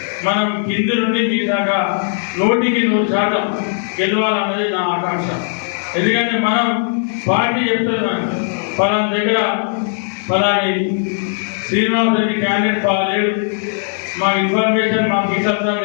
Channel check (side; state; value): right; silent; digital silence